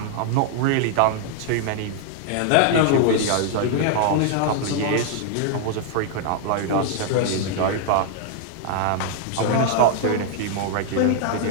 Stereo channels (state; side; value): different; both; correlation 0.00